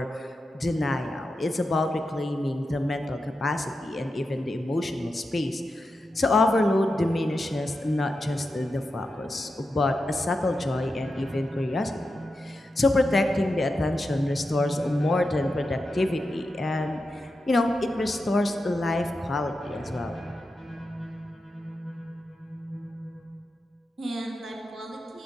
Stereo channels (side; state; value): both; normal; correlation 0.89